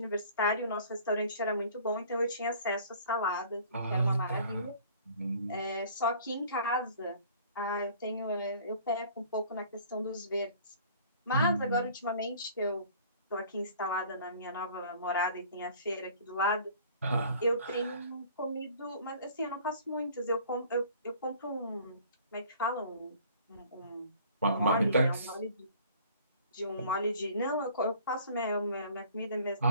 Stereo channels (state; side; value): inverted; both; correlation -0.51